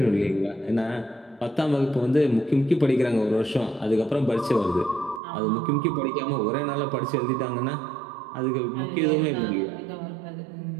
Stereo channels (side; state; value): left; drops out; at 5.2 s